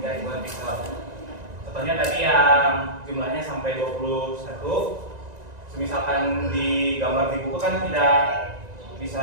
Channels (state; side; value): late; left; 1.9 ms